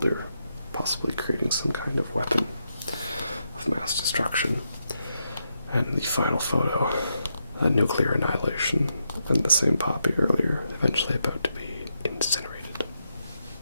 possibly creating some kind of weapon of mass destruction. And the final photo, a nuclear annihilation, and the same poppy earlier, eventually about to be incinerated.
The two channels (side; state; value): both; inverted; correlation -0.83